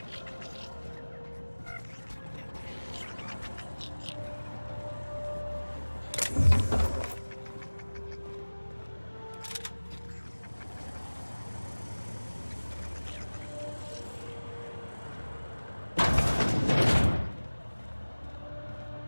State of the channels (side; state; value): both; inverted; correlation -1.00